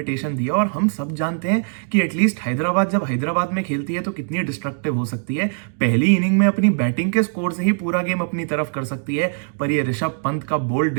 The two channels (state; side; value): silent; left; digital silence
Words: दिया और हम सब जानते हैं कि एटलीस्ट हैदराबाद जब हैदराबाद में खेलती है तो कितनी डिस्ट्रक्टिव हो सकती है। पहली इनिंग में अपनी बैटिंग के स्कोर से ही पूरा गेम अपनी तरफ कर सकती है। पर यह ऋषभ पंत का बोल्ड